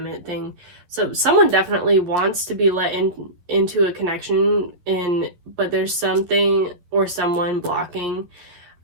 it thing. So someone definitely wants to be let into a connection, but there's something or someone blocking.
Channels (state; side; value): late; left; 11 ms